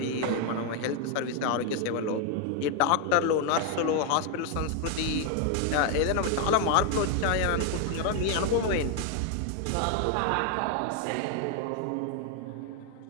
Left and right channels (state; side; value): different; both; correlation 0.01